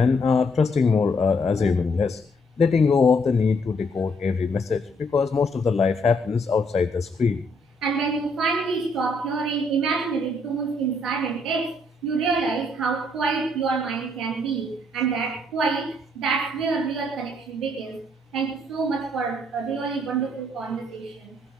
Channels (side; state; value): both; normal; correlation 0.70